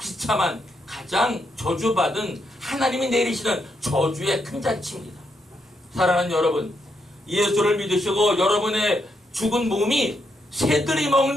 가장 저주받은 하나님이 내리시는 저주의 큰 잔치입니다. 사랑하는 여러분, 예수를 믿으시고 여러분의 죽은 몸이 새들이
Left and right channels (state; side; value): normal; both; correlation 0.79